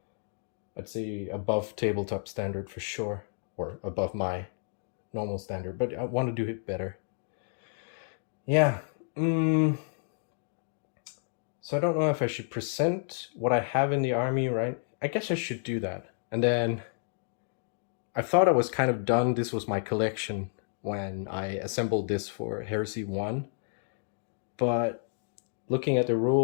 I'd say above tabletop standard for sure, or above my normal standard, but I want to do it better. Yeah. So I don't know if I should present what I have in the army, right? I guess I should do that. And then I thought I was kind of done. This was my collection when I assembled this for Heresy 1. But looking at the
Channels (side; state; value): right; silent; digital silence